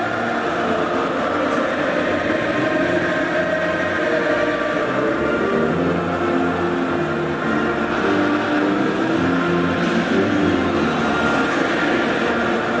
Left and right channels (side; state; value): both; identical; correlation 1.00